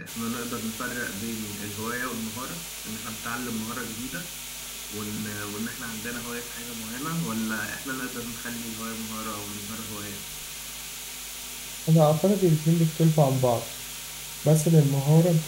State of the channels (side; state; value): both; identical; correlation 1.00